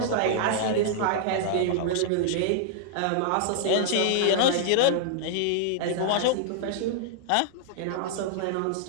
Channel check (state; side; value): different; both; correlation -0.01